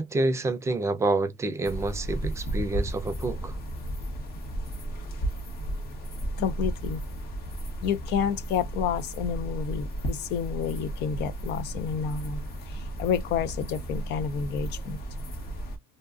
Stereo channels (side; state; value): both; normal; correlation 0.49